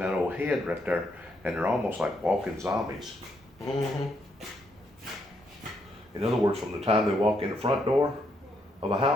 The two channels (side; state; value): both; normal; correlation 0.76